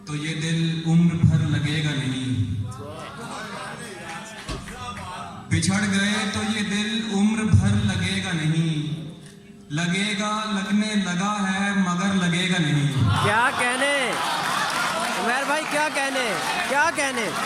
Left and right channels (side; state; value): both; identical; correlation 1.00